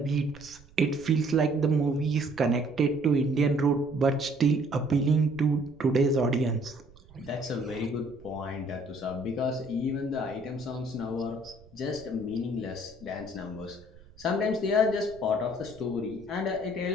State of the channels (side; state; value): right; noise; rumble, 24 dB below the sound